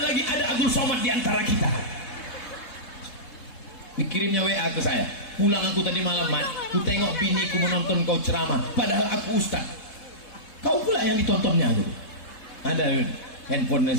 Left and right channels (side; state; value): right; late; 3.7 ms